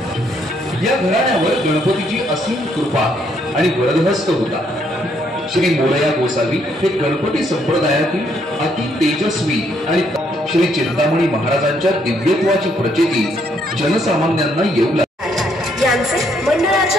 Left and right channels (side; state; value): both; normal; correlation 0.71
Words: या घराण्यावर गणपतीची असीम कृपा आणि वरदहस्त होता। श्री मोरया गोसावी हे गणपती संप्रदायातील अति तेजस्वी आणि श्री चिंतामणी महाराजांच्या दिव्यत्वाची प्रचिती जनसामान्यांना येऊ लागली। यांचे